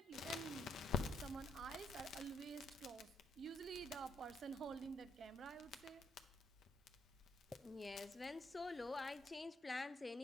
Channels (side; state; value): both; normal; correlation 0.73